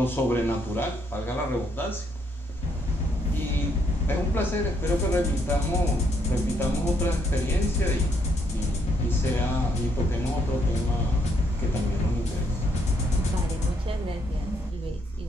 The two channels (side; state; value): both; normal; correlation 0.73